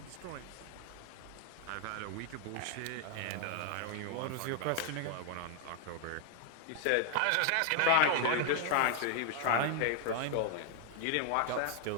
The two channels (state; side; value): different; both; correlation 0.00